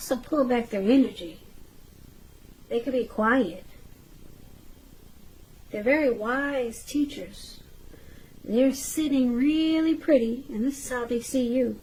pull back their energy. They can be quiet. They're very wise teachers. They're sitting really pretty, and this is how they see you.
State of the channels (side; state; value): both; identical; correlation 1.00